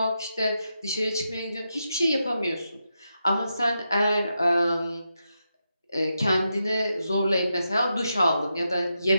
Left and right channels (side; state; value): both; inverted; correlation -0.86